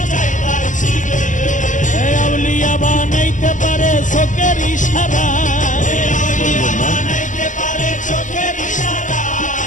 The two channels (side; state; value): right; late; 0.37 ms